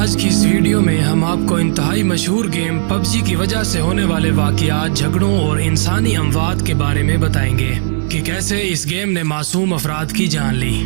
की इस वीडियो में हम आपको इंतहाई मशहूर गेम पबजी की वजह से होने वाले वाक़यात, झगड़ों और इंसानी अमवात के बारे में बताएंगे कि कैसे इस गेम ने मासूम अफराद की जान ली।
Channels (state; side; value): silent; left; digital silence